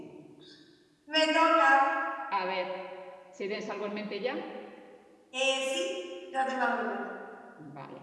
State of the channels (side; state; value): both; identical; correlation 1.00